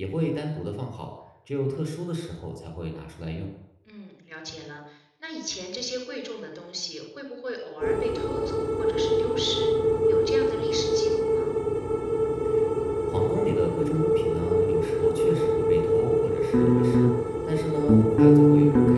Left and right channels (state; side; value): identical; both; correlation 1.00